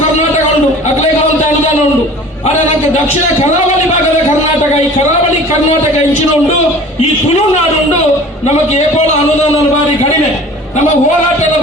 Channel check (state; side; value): normal; both; correlation 0.44